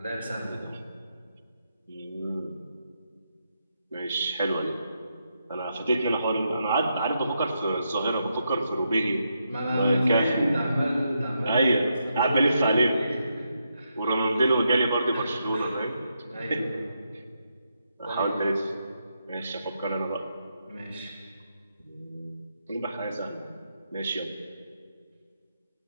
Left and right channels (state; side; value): inverted; both; correlation -0.82